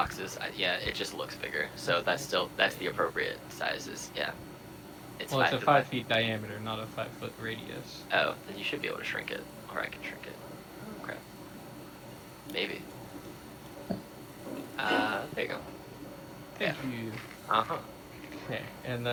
Yeah, it just looks bigger. So that's the appropriate sizes. Yeah. Well, it's a 5 feet diameter, not a 5 foot radius. Oh, then you should be able to shrink it, or I can shrink it. Oh, crap. Maybe. There you go. Thank you. Okay, and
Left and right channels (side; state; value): both; identical; correlation 1.00